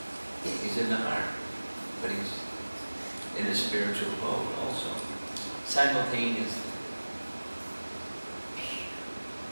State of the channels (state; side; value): inverted; both; correlation -1.00